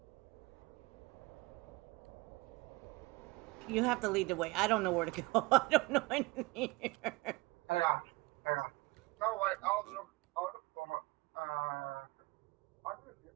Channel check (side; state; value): left; quieter; 23.9 dB